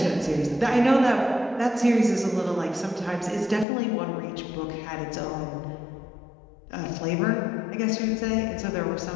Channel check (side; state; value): right; drops out; at 3.7 s